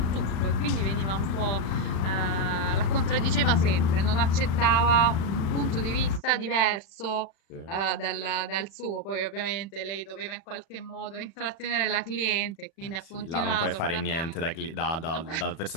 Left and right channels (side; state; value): right; late; 36 ms